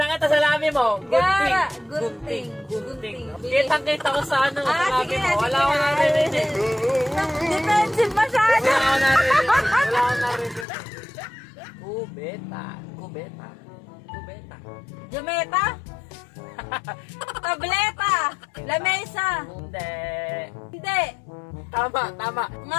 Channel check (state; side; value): drops out; right; at 10.7 s